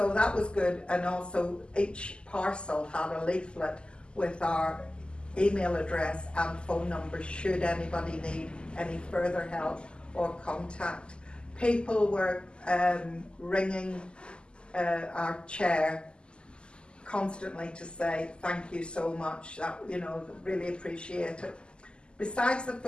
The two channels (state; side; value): late; right; 0.050 ms